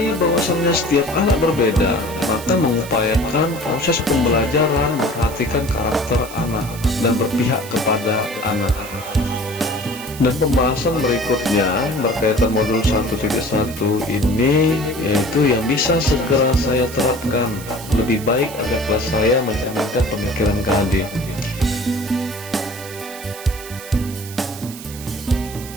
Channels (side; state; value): right; noise; hiss, 14 dB below the sound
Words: bahwasannya setiap anak berbeda, maka mengupayakan proses pembelajaran memperhatikan karakter anak dan berpihak kepada anak. Dan pembahasan berikutnya berkaitan modul 1.1 ini, yaitu yang bisa segera saya terapkan lebih baik agar kelas saya mencerminkan pemikiran KHD.